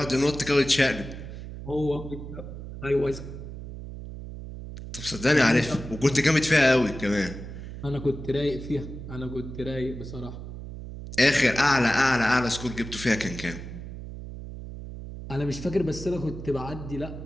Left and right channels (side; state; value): right; noise; hum, 10 dB below the sound